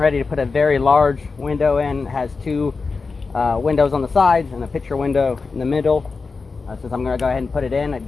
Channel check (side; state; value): right; quieter; 4.4 dB